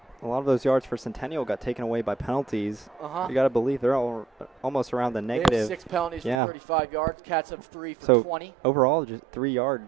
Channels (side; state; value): left; drops out; at 6.4 s